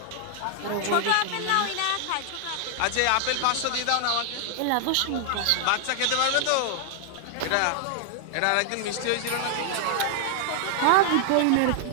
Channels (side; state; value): both; different; correlation 0.00